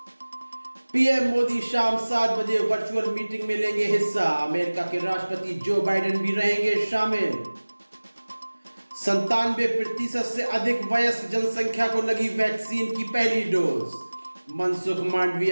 पीएम मोदी शाम 7 बजे वर्चुअल मीटिंग में लेंगे हिस्सा। अमेरिका के राष्ट्रपति जो बाइडेन भी रहेंगे शामिल। 97% से अधिक वयस्क जनसंख्या को लगी वैक्सीन की पहली डोज, मनसुख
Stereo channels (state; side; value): inverted; both; correlation -1.00